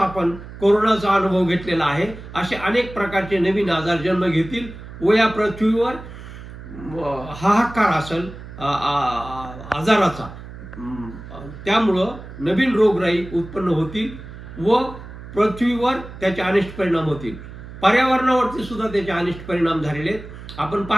कोरोनाचा अनुभव घेतलेला आहे. असे अनेक प्रकारचे नवीन आजार जन्म घेतील व या पृथ्वीवर हाहाकार असेल आजाराचा. त्यामुळं नवीन रोगराई उत्पन्न होतील व पृथ्वीवर त्याचे अनिष्ट परिणाम होतील. पर्यावरणावरती सुद्धा त्याचे अनिष्ट परिणाम झालेले आहेत. आपण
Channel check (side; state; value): right; noise; hum, 14 dB below the sound